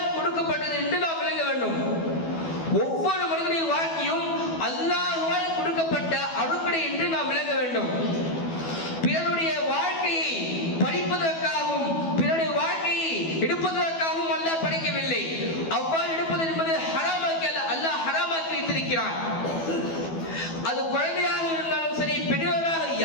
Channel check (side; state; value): right; late; 12 ms